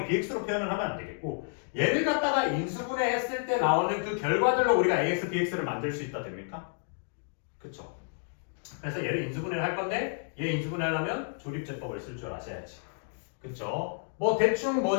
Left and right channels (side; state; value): right; silent; digital silence